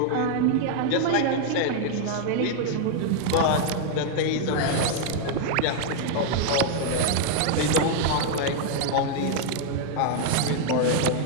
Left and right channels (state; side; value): different; both; correlation 0.00